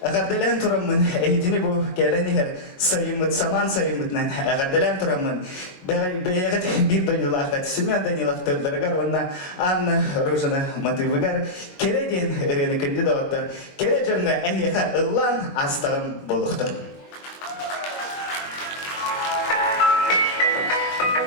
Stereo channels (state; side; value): late; right; 22 ms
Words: Agardelen turamın eğitini bu geleniher sayımıt saman sayımıtnan agardelen turamın beyget bir bölülağat Semyon Danilov töllergar ona Anna Rozana Matıvıgar keredin ereni kandidatlar kerecenga ehyeha ıllan astağın boluqtur.